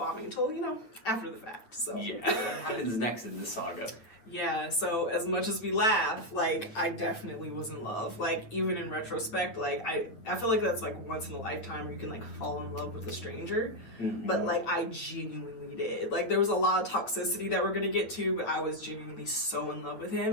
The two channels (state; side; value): late; right; 9.1 ms